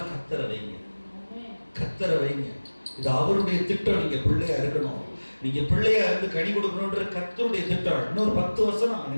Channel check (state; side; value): inverted; both; correlation -1.00